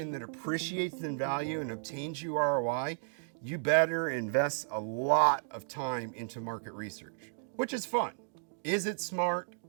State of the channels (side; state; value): left; silent; digital silence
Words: that appreciates in value and obtains you ROI, you better invest a lot of time into market research, which is fun. Is it smart